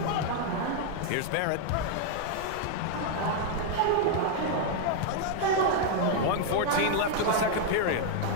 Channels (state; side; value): different; both; correlation 0.00